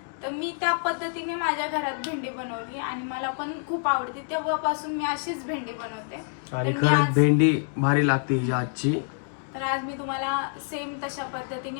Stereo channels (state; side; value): silent; right; 60 dB below the other